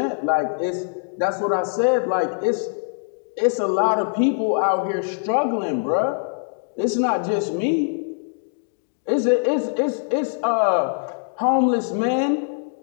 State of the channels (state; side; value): silent; right; digital silence